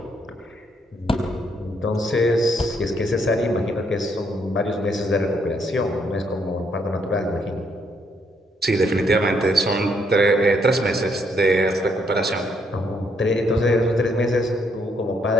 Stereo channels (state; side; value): normal; both; correlation 0.72